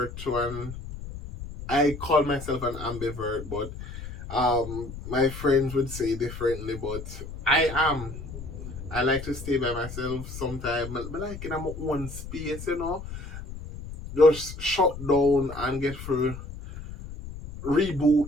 to I call myself an ambivert, but my friends would say differently. But I am. I like to stay by myself sometimes. But like in my own space, just shut down and get through, reboot,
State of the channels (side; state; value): left; noise; rumble, 11 dB below the sound